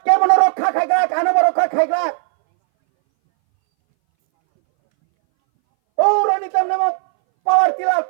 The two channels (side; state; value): left; silent; 64 dB below the other